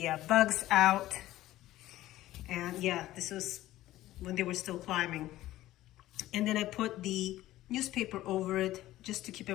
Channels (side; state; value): right; quieter; 15.2 dB